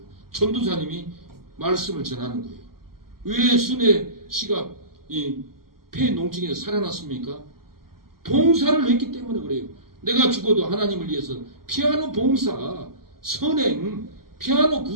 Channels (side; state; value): left; late; 0.93 ms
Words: 전도사님이 말씀을 전하는 거예요. 왜 순애 씨가 이 폐농증에서 살아났습니까? 봉사를 했기 때문에 그래요. 내가 죽어도 하나님을 위해서 피아노 봉사, 선행, 피아노